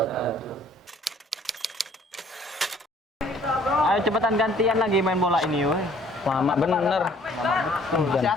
Ayo cepetan gantian lagi main bola ini, woi. Lama bener. Masih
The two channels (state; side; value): normal; both; correlation 0.57